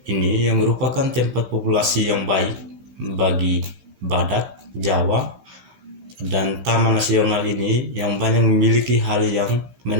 ini yang merupakan tempat populasi yang baik bagi badak Jawa, dan Taman Nasional ini yang banyak memiliki hal yang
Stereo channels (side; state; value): left; late; 15 ms